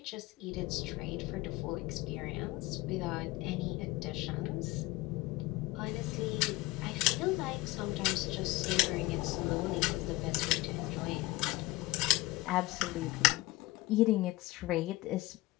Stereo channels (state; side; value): quieter; right; 19.8 dB